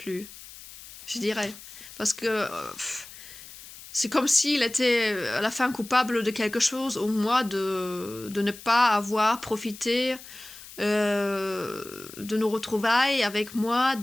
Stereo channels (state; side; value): noise; left; hiss, 17 dB below the sound